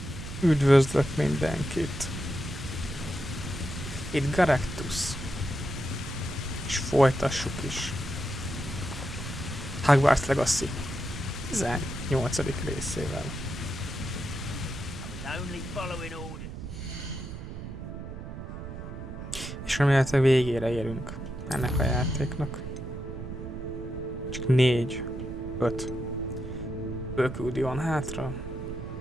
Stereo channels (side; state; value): right; noise; rumble, 8 dB below the sound